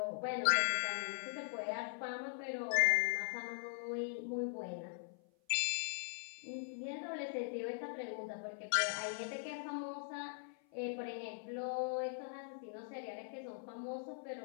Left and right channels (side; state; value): right; silent; 50 dB below the other